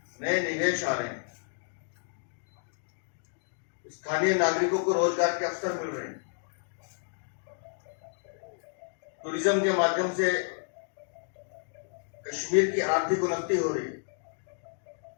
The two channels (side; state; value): right; silent; digital silence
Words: नए निवेश आ रहे हैं, स्थानीय नागरिकों को रोजगार के अवसर मिल रहे हैं, टूरिज्म के माध्यम से कश्मीर की आर्थिक उन्नति हो रही है।